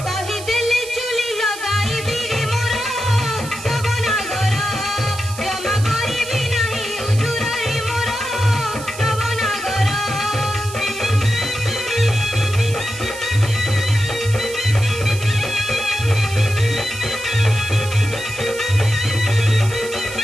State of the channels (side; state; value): right; noise; hiss, 13 dB below the sound